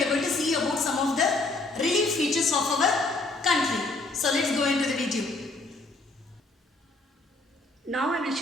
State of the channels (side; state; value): right; quieter; 3.2 dB